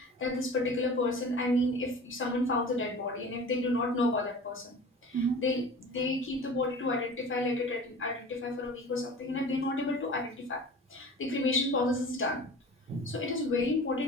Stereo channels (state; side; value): normal; both; correlation 0.39